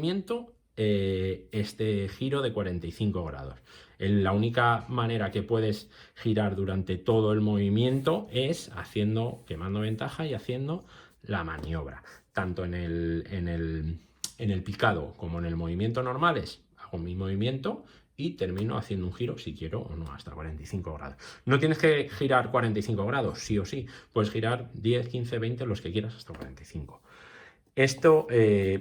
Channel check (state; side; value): identical; both; correlation 1.00